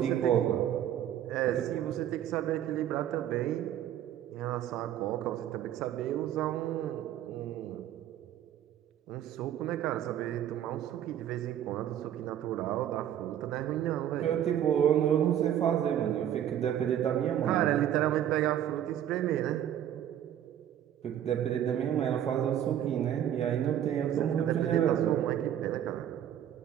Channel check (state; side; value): quieter; left; 10.7 dB